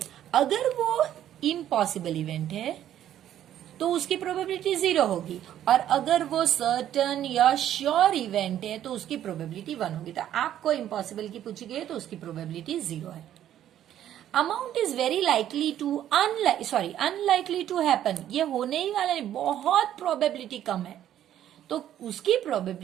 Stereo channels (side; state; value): left; quieter; 11.4 dB